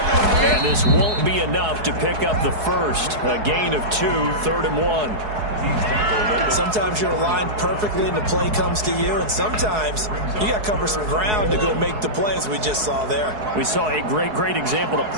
And this won't be enough to pick up the first. A gain of 2, 3rd and 1. Sometimes you're aligned perfectly and the play comes to you, and sometimes you got to cover some ground to go make the play, as we just saw there. We saw a great example of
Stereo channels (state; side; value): late; left; 4.7 ms